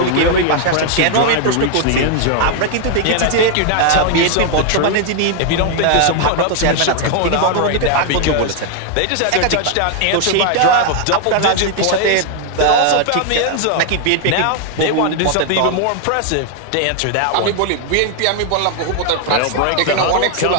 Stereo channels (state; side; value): different; both; correlation 0.00